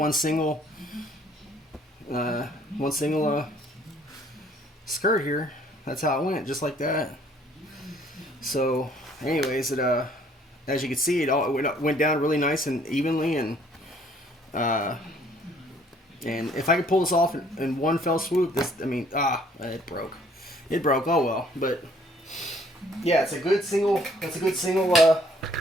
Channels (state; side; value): normal; both; correlation 0.60